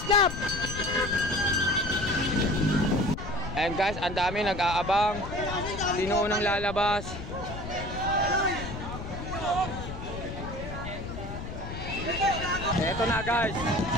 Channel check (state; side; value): noise; left; rumble, 8 dB below the sound